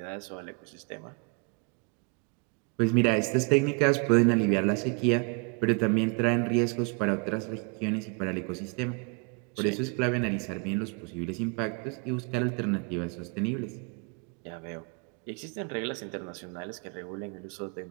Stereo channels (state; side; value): quieter; left; 32.8 dB